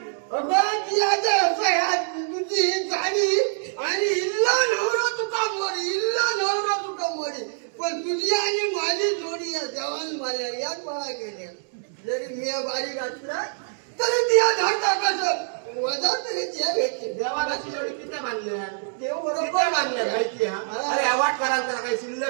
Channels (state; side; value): silent; left; digital silence